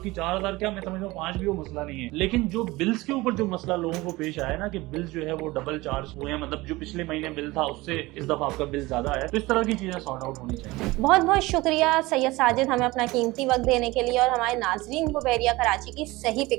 4000 क्या, मैं समझता हूँ 5 भी वो मसला नहीं है। लेकिन जो बिल्स के ऊपर जो मसला लोगों को पेश आया ना कि बिल्स जो है वो डबल चार्ज हुए हैं, मतलब जो पिछले महीने बिल था उससे इस दफा आपका बिल ज्यादा है, तो इस तरह की चीजें सॉर्ट आउट होनी चाहिए। बहुत बहुत शुक्रिया सैयद साजिद, हमें अपना कीमती वक्त देने के लिए और हमारे नाजरीन को बहरिया कराची की सही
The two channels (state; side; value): quieter; left; 20.7 dB